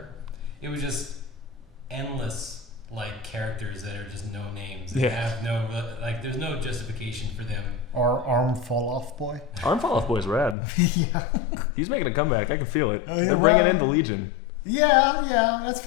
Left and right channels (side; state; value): right; drops out; at 10.6 s